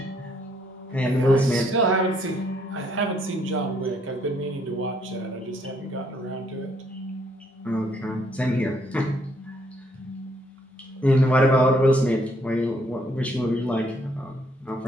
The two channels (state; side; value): normal; both; correlation 0.69